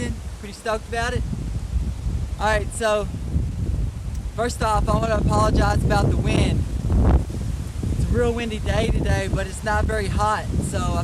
Pretty stoked about it. Alright, so first off, I want to apologize about the wind. It's a real windy day today, but it's not very hot, so I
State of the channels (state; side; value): identical; both; correlation 1.00